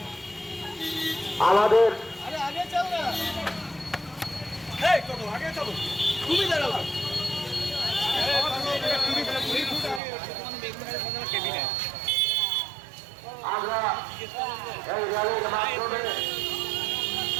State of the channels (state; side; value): drops out; left; at 10.0 s